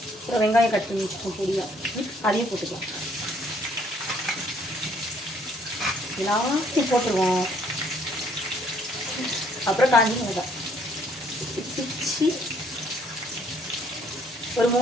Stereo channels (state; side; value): normal; both; correlation 0.64